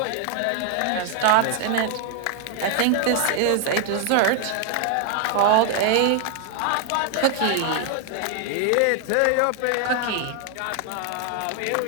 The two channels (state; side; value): different; both; correlation 0.00